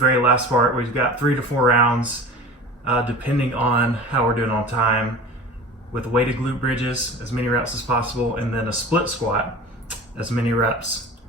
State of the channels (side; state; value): both; normal; correlation 0.37